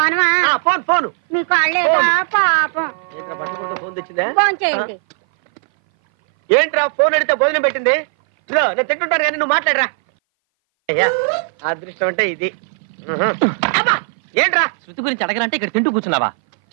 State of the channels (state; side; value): silent; left; 59 dB below the other